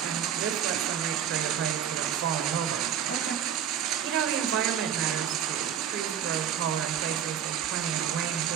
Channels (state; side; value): quieter; left; 9.1 dB